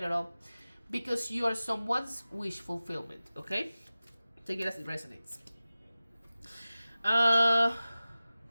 because you are someone's wish fulfillment, okay? Take it as it resonates. Now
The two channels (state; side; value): inverted; both; correlation -0.96